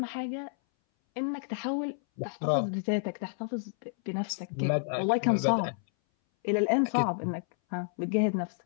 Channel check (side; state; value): right; silent; 58 dB below the other